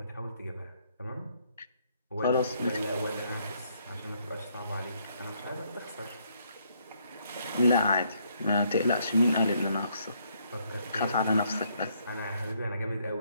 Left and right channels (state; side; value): inverted; both; correlation -0.71